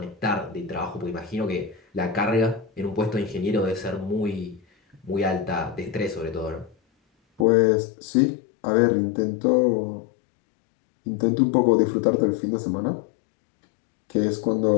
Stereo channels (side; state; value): right; drops out; at 7.5 s